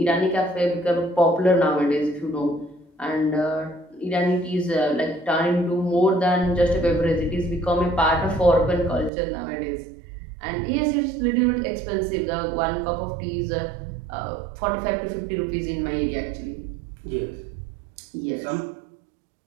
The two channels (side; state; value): left; drops out; at 9.1 s